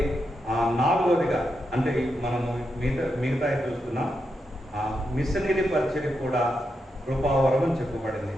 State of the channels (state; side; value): normal; both; correlation 0.85